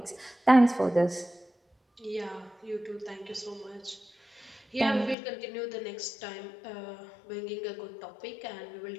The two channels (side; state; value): right; drops out; at 5.2 s